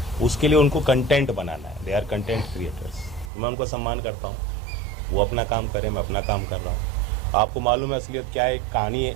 उसके लिए उनको कंटेंट बनाना है। They are content creators. मैं उनको सम्मान करता हूँ, वो अपना काम करें, मैं अपना काम कर रहा हूँ। आपको मालूम है असलियत क्या है? एक कहानी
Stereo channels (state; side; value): drops out; left; at 3.3 s